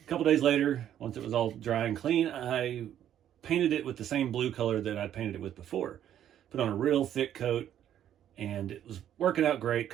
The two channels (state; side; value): quieter; left; 10.6 dB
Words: couple days later, once it was all dry and clean, I painted it with the same blue color that I'd painted it with before. Put on a real thick coat, and it was working out great.